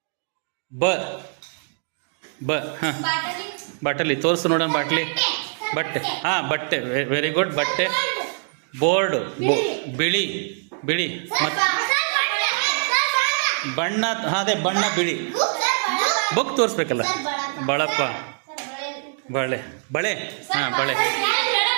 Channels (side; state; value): left; silent; digital silence